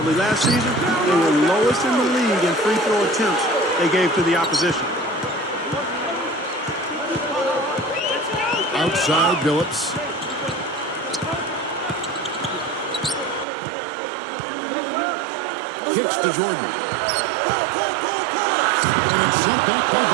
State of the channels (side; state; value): left; drops out; at 13.5 s